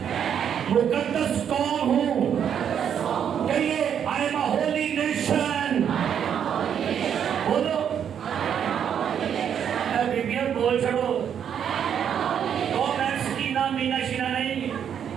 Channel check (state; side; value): quieter; left; 8.5 dB